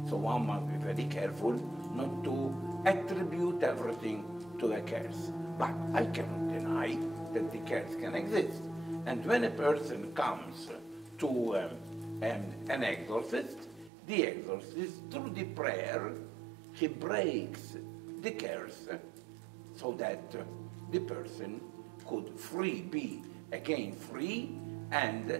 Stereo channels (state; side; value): drops out; left; at 13.9 s